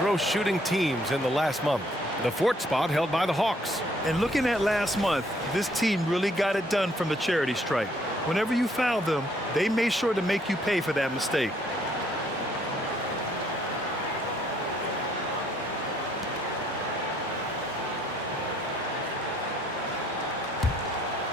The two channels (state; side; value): normal; both; correlation 0.66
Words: shooting teams in the last month. The 4th spot held by the Hawks. And looking at last month, this team really got it done from the charity stripe. Whenever you foul them, they made sure to make you pay for that mistake.